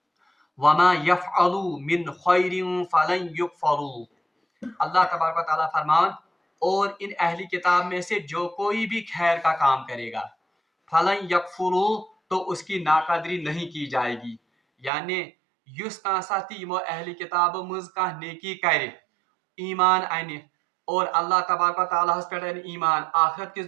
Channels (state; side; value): drops out; left; at 14.9 s